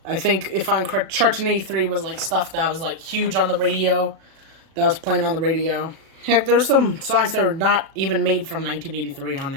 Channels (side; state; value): left; late; 36 ms